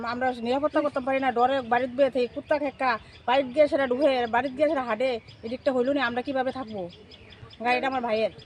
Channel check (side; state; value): both; identical; correlation 1.00